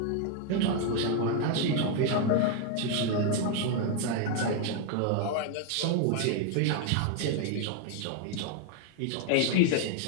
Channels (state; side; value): different; both; correlation 0.01